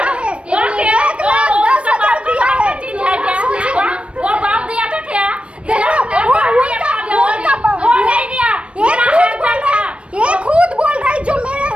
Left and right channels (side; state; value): left; late; 0.060 ms